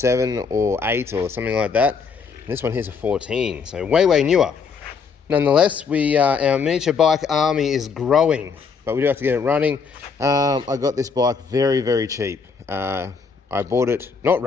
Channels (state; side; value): quieter; right; 5.5 dB